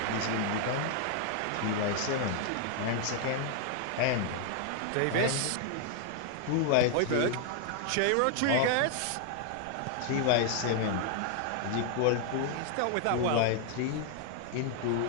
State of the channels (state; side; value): different; both; correlation 0.00